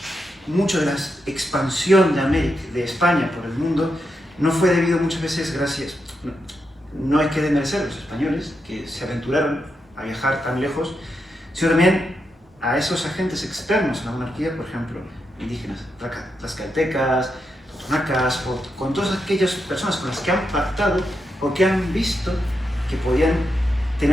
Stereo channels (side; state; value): both; normal; correlation 0.85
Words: mucho de la expansión de América, de España por el mundo, no fue debido muchas veces gracias, no hay que desmerecer a los españoles que se aventuraron a viajar tan lejos, sino también a esos agentes externos a la monarquía, por ejemplo, indígenas, tlaxcaltecas, totonacas, con todas aquellas personas con las que han pactado o que han visto que podían